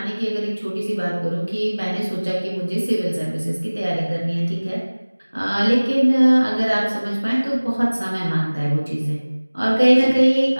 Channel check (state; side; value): inverted; both; correlation -1.00